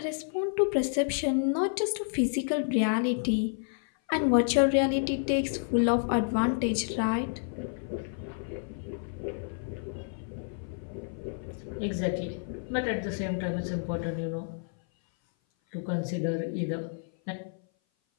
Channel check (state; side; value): silent; right; 56 dB below the other